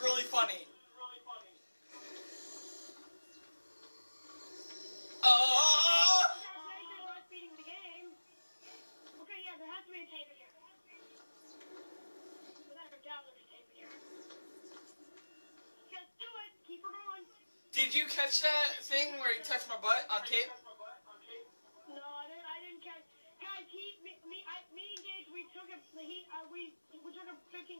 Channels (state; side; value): inverted; both; correlation -1.00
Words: really funny. Not beating the game. Okay, yeah, there has to be a tape in here. Without a doubt, there's a tape in here. Just do it. Keep her going. Did you catch that thing where he touched my butt on tape? No, I didn't catch. Guys, me and Gage, we took a